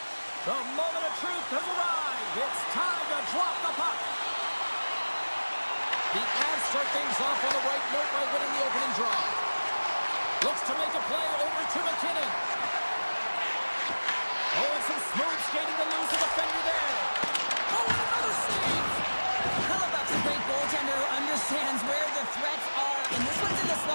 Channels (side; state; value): both; inverted; correlation -1.00